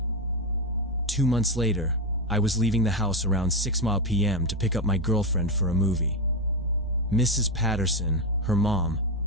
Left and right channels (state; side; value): normal; both; correlation 0.10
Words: 2 months later, I was leaving the house around 6 p.m. to pick up my girlfriend for a movie. Mrs. Patterson, her mom,